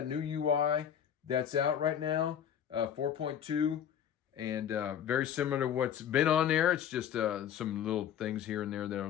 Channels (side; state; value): right; quieter; 9.2 dB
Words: new UI that's out right now, 4.2, and very similar to what's been on there. It's just some little things here and there that are